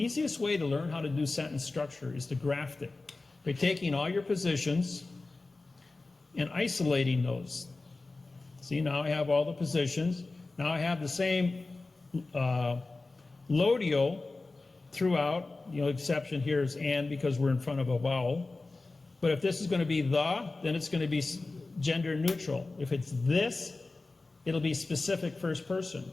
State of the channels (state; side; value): quieter; right; 3.4 dB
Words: way to learn how to do sentence structure is to graft it by taking all your positions and isolating those. See, now I have all the positions. Now I have the same lodio throughout. The only exception here is and, because we're in front of a vowel. But if this is going to be the, then it's going to be gender neutral. If it's this, it'll be specific first person.